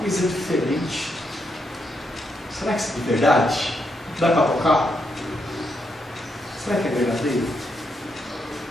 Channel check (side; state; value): both; normal; correlation 0.80